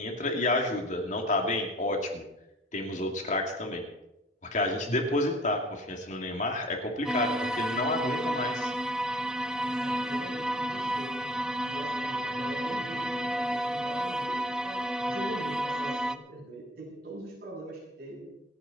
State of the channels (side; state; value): both; normal; correlation 0.49